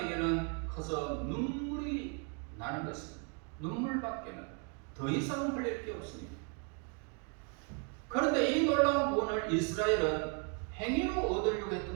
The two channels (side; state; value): left; quieter; 37.1 dB